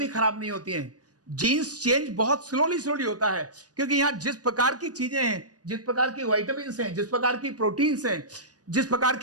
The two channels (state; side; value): late; left; 0.68 ms